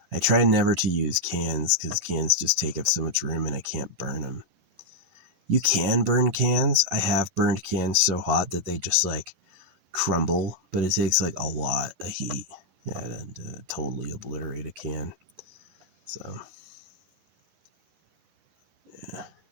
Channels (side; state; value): left; late; 10 ms